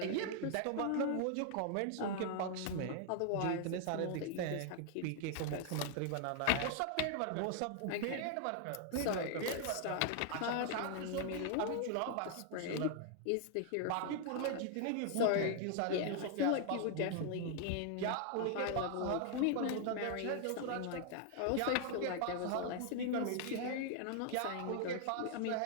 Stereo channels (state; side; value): different; both; correlation 0.00